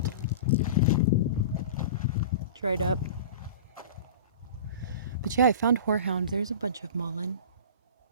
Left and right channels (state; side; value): inverted; both; correlation -0.35